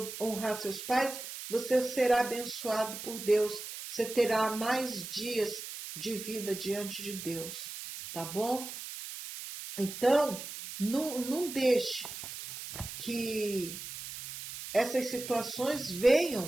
honrar seus pais, você será abençoado por Deus, você terá mais dias de vida diante de Deus, tá bom? Então, não deixe que essas situações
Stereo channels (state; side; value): noise; right; hiss, 9 dB below the sound